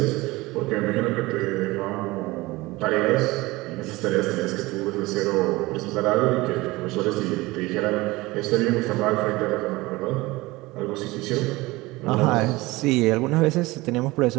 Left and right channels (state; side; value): quieter; left; 20.9 dB